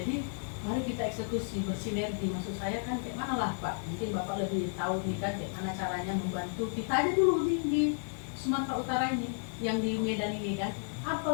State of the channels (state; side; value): silent; right; digital silence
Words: mari kita eksekusi, bersinergi. Maksud saya kan kayak mana lah Pak, mungkin Bapak lebih tahu nih kan kayak mana caranya membantu kita aja dulu di Sumatera Utara ini, yang di Medan ini kan.